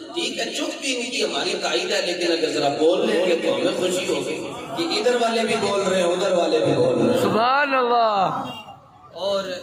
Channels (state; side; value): identical; both; correlation 1.00